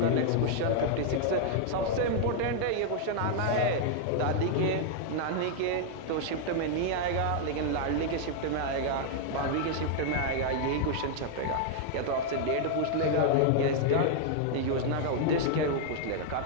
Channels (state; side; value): different; both; correlation 0.00